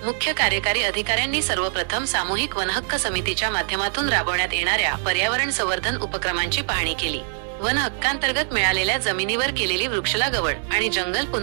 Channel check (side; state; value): left; silent; digital silence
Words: मुख्य कार्यकारी अधिकाऱ्यांनी सर्वप्रथम सामूहिक वनहक्क समितीच्या माध्यमातून राबवण्यात येणाऱ्या पर्यावरण संवर्धन उपक्रमांची पाहणी केली। वन हक्कांतर्गत मिळालेल्या जमिनीवर केलेली वृक्षलागवड आणि जंगल